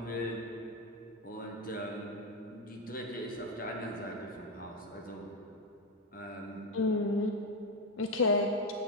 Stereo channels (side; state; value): both; normal; correlation 0.09